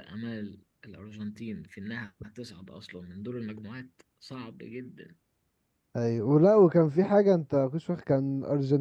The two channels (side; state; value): both; identical; correlation 1.00